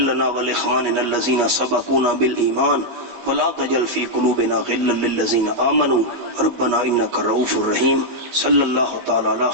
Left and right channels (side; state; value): left; late; 19 ms